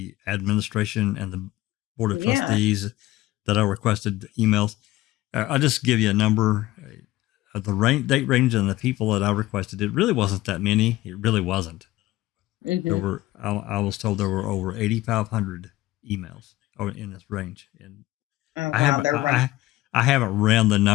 administration and the Board of Trustees that I requested emails. I'll just give you a number. The date range and the people that I requested, it really wasn't that many. It really wasn't. There were, I was told there were over 8,500 emails in this range. And I haven't ran the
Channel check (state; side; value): quieter; right; 17.4 dB